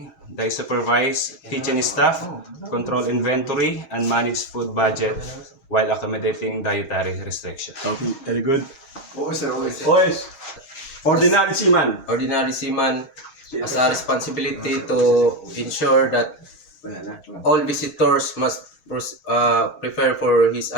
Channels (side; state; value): right; late; 6.4 ms